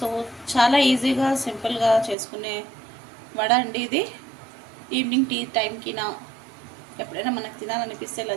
చాలా ఈజీగా సింపుల్గా చేసుకునే వడ అండి ఇది. ఈవినింగ్ టీ టైంకి ఎప్పుడైనా మనకు తినాలనిపిస్తే ఇలా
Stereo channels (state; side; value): drops out; left; at 2.1 s